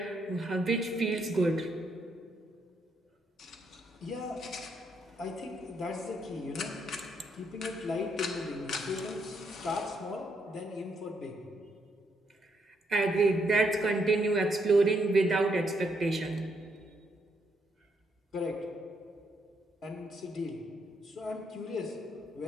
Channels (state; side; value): normal; both; correlation 0.76